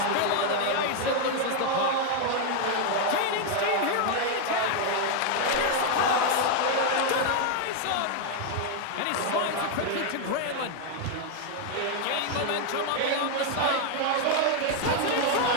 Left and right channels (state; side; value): different; both; correlation 0.00